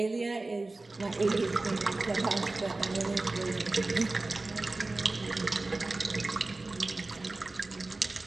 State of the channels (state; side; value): quieter; left; 3.2 dB